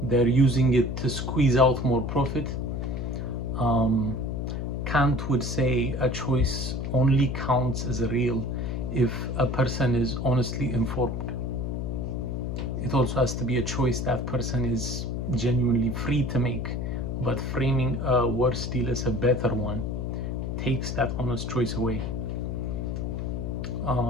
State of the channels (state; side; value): noise; left; hum, 3 dB below the sound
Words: They're using it to squeeze out more profit. Kant would say a choice only counts as real if a person is honestly informed. It also has to be a choice that person is genuinely free to make. But framing a worse deal as a better one takes that honest choice away.